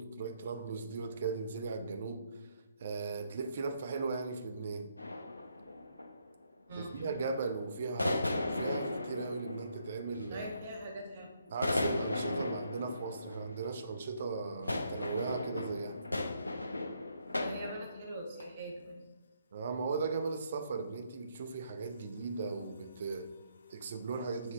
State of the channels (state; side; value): inverted; both; correlation -0.74